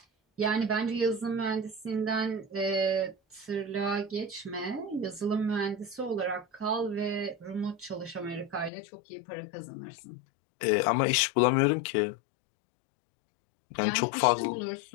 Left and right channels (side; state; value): right; drops out; at 8.7 s